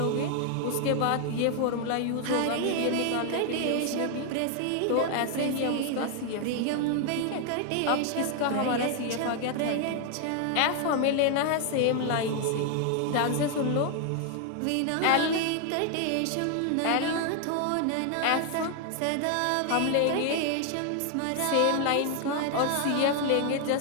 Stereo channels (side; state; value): both; different; correlation 0.00